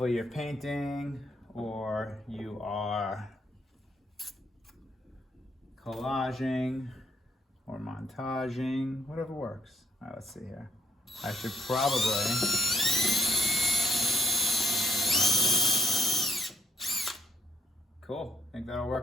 you're painting or you are collaging or montaging, whatever works. All right, let's see here. I should probably, cool, I think that'll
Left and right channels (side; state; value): both; normal; correlation 0.68